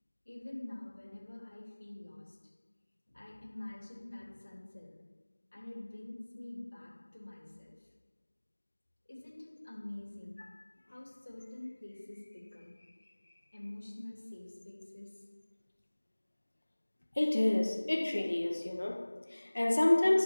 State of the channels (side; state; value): both; inverted; correlation -1.00